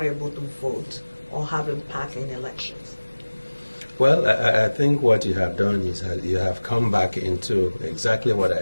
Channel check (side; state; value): both; inverted; correlation -1.00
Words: able to vote or have impact in elections? Well, I think what you have done is you have come back into exactly what